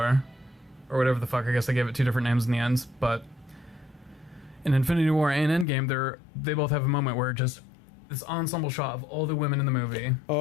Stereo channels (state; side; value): drops out; right; at 5.7 s